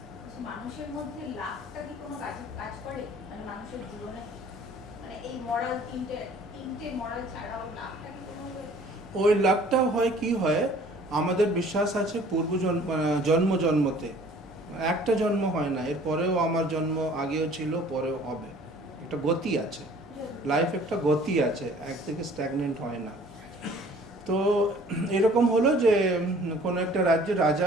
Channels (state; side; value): normal; both; correlation 0.52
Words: মানুষের মধ্যে লাভটা কি কোনো কাজ করে, মানে মানুষের জীবনে, মানে এই মরাল তিনটে মরাল ছাড়াও লাভটা কি কোনো? ওই লাভটা হয় কি হয়, আমাদের বিশ্বাস আছে জন্মতে, একটা জন্ম হয় না, এরপরেও আমার জন্ম আগেও ছিল, পরেও হবে। একটা গতি আছে, লাইফ একটা গতি আছে, এক থেকে স্ট্যাগনেন্ট হয় না। তো এরকম হলো যে কোনো একটা রাজ্যের